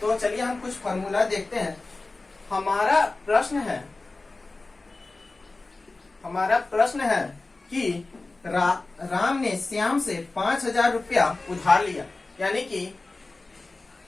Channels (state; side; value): quieter; right; 3.3 dB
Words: तो चलिए हम कुछ फॉर्मूला देखते हैं। हमारा प्रश्न है कि राम ने श्याम से 5,000 रुपया उधार लिया, यानी कि